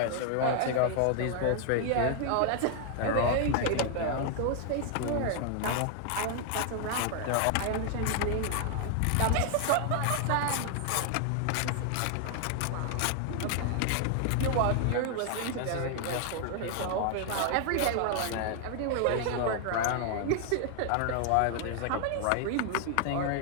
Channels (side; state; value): both; different; correlation 0.00